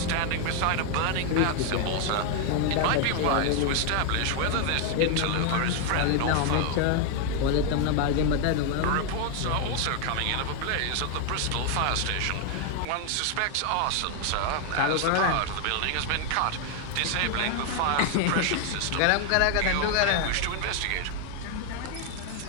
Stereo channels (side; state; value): both; different; correlation 0.00